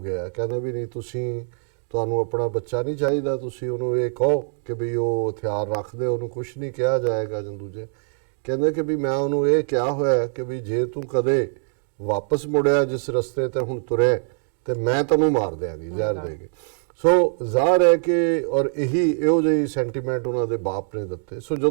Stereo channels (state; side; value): silent; left; digital silence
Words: ਗਿਆ। ਕਹਿੰਦੇ ਵੀ ਨਹੀਂ, ਤੁਹਾਨੂੰ ਆਪਣਾ ਬੱਚਾ ਨਹੀਂ ਚਾਹੀਦਾ, ਤੁਸੀਂ ਉਹਨੂੰ ਇਹ ਕਹੋ ਕਿ ਵੀ ਉਹ ਹਥਿਆਰ ਰੱਖਦੇ, ਉਹਨੂੰ ਕੁਛ ਨਹੀਂ ਕਿਹਾ ਜਾਏਗਾ। ਜਾਂ ਦੂਜੇ ਕਹਿੰਦੇ ਕਿ ਵੀ ਮੈਂ ਉਹਨੂੰ ਇਹ ਕਿਹਾ ਹੋਇਆ ਕਿ ਵੀ ਜੇ ਤੂੰ ਕਦੇ ਵਾਪਸ ਮੁੜਿਆ ਜਿਸ ਰਸਤੇ ਤੇ ਹੁਣ ਤੁਰੇ ਤੇ ਮੈਂ ਤੈਨੂੰ ਮਾਰ ਦਿਆਂਗੀ ਜ਼ਹਿਰ ਦੇ ਕੇ। ਸੋ ਜ਼ਾਹਰ ਹੈ ਕਿ ਔਰ ਇਹੋ ਜਿਹੀ ਸੈਂਟੀਮੈਂਟ ਉਹਨਾਂ ਦੇ ਬਾਪ ਨੇ ਦਿੱਤੇ। ਸੋ